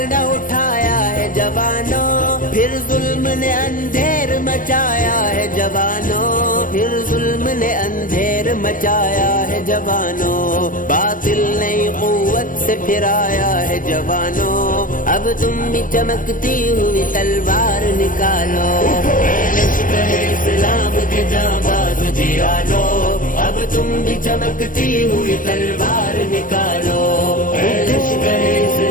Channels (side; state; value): right; late; 0.39 ms